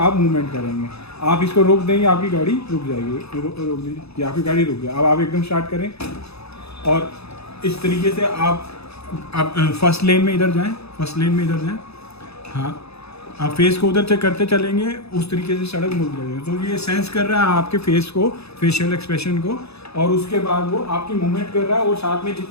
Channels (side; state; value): right; late; 0.79 ms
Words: मूवमेंट करेंगे। आप इसको रोक देंगे, आपकी गाड़ी रुक जाएगी। रोक दीजिए, ये आपकी गाड़ी रुक गई। अब आप एकदम स्टार्ट करें और इस तरीके से आप फर्स्ट लेन में इधर जाएं, फर्स्ट लेन में इधर जाएं। हाँ, आप फेस को उधर से करते चलेंगे, उस तरीके से सड़क मुड़ जाएगी। तो ये सेंस कर रहा है आपके फेस को, फेशियल एक्सप्रेशन को, और उसके बाद वो आपकी मूवमेंट कर रहा है। और साथ में